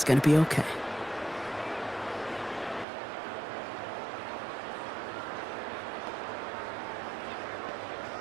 gonna be okay.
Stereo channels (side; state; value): left; drops out; at 2.9 s